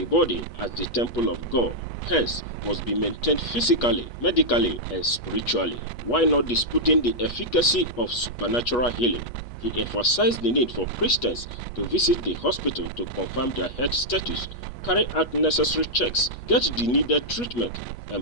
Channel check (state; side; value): late; right; 8.3 ms